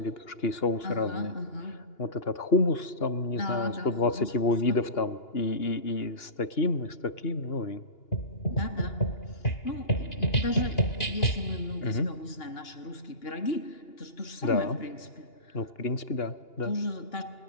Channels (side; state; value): right; late; 2.8 ms